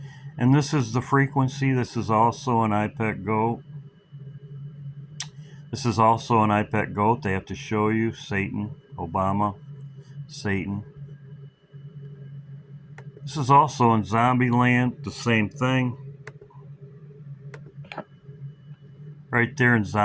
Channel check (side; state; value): both; identical; correlation 1.00